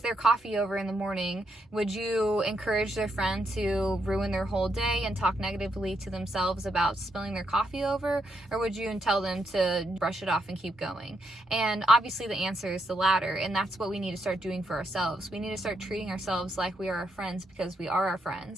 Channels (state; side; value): normal; both; correlation 0.79